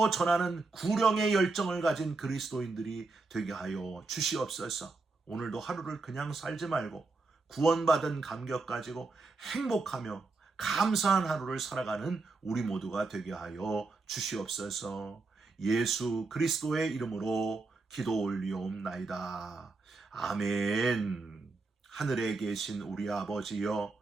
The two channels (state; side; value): quieter; left; 3.7 dB